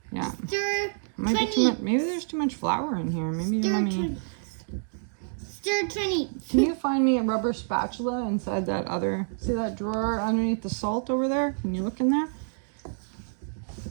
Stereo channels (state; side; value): silent; left; digital silence